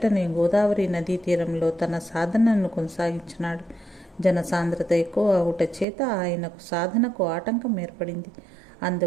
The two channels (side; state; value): left; drops out; at 5.9 s